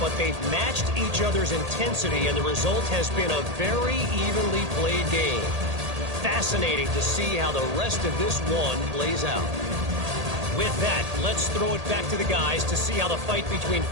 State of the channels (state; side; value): late; left; 1.8 ms